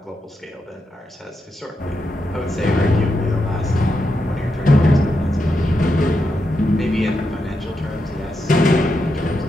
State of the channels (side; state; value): both; normal; correlation 0.85